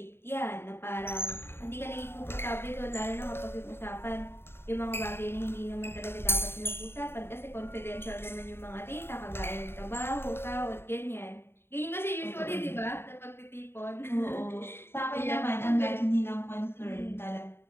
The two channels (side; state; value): right; late; 0.11 ms